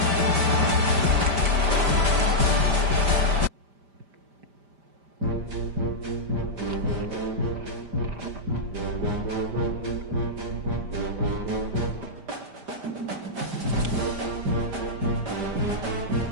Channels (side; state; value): left; late; 5.0 ms